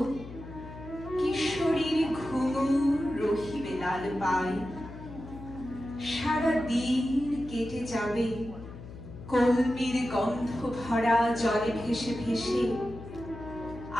কিশোরীর ঘুঙুর রহিবে লাল পায়। সারা দিন কেটে যাবে কলমির গন্ধ ভরা জলে ভেসে ভেসে।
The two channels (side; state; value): left; noise; hum, 13 dB below the sound